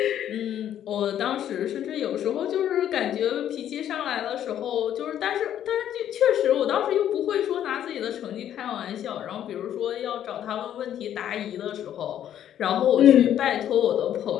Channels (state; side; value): quieter; right; 10.6 dB